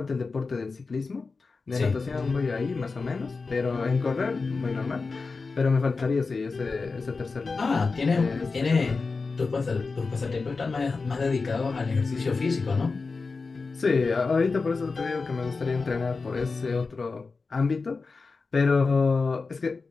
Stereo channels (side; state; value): right; quieter; 4.3 dB